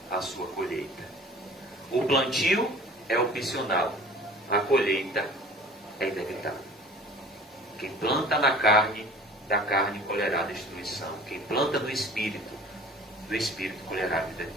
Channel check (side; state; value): both; normal; correlation 0.46